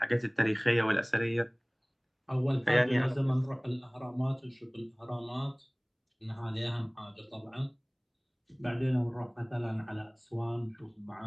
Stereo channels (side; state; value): both; identical; correlation 1.00